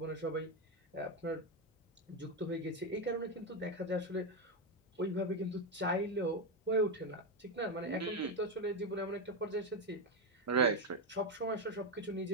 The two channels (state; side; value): normal; both; correlation 0.08